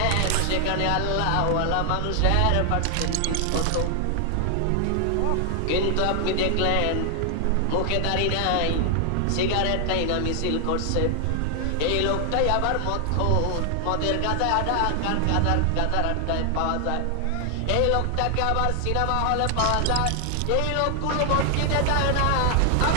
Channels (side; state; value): both; different; correlation 0.00